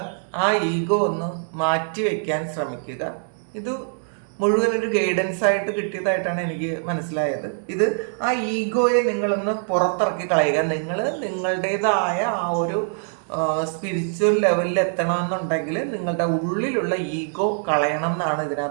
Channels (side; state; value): left; silent; digital silence